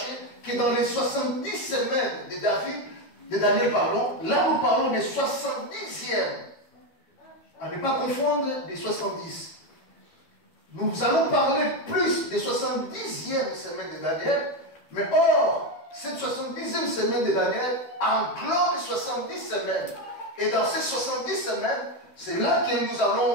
que dans les 70 semaines de Daniel, pardon, là nous parlons des 70e. À ne pas confondre des 70. Nous allons parler plus des 70e semaine de Daniel, mais or, cette 70e semaine de Daniel englobe 70 semaines. Et dans ces 70 semaines, c'est là que nous allons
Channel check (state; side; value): late; right; 12 ms